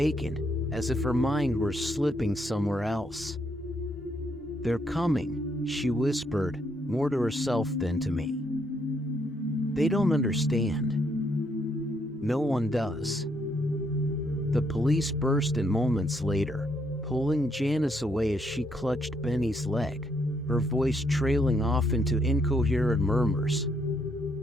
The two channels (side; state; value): both; normal; correlation 0.73